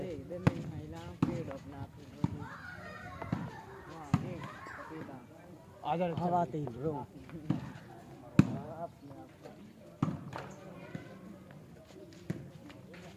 इधर नहीं महिला पेड़ अपना आजा हवा आते ही रो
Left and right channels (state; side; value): identical; both; correlation 1.00